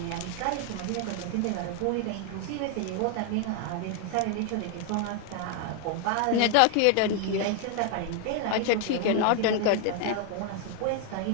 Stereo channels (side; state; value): both; different; correlation 0.00